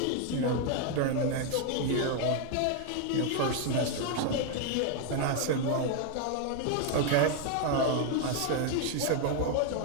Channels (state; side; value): different; both; correlation 0.01